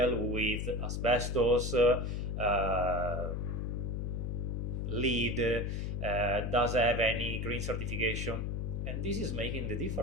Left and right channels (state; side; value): noise; left; hum, 2 dB below the sound